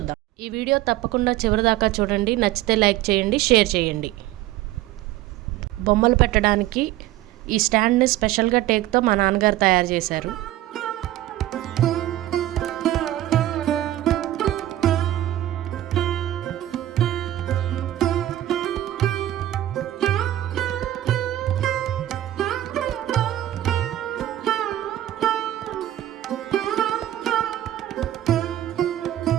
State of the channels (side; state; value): left; quieter; 14.0 dB